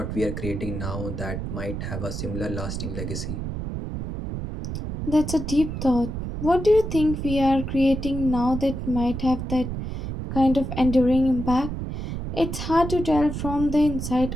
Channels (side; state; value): right; noise; rumble, 5 dB below the sound